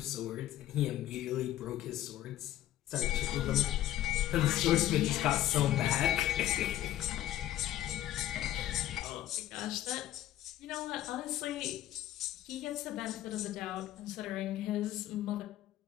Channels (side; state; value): right; quieter; 13.3 dB